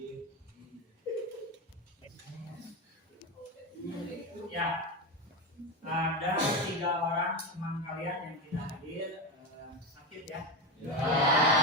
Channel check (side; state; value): both; normal; correlation 0.15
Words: ya, ada 3 orang teman kalian yang tidak hadir, sakit ya? Ya.